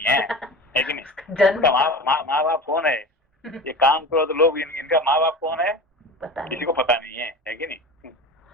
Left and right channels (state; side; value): normal; both; correlation 0.32